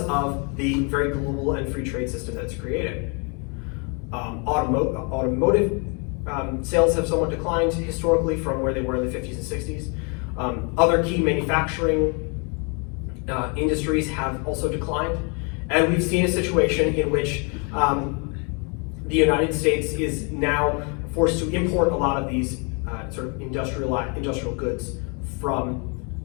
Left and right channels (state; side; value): quieter; right; 34.6 dB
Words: of the very global and free trade system that's created. Automotive sales have somewhat declined historically from where they were in the 50s and 60s. Other key manufacturing industries have also declined. And we've seen a situation in which the United States is now forced to import a lot of these sort of industrial goods from